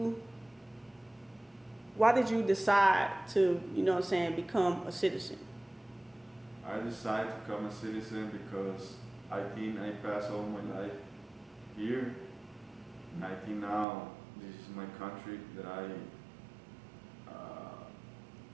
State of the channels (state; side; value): drops out; left; at 13.9 s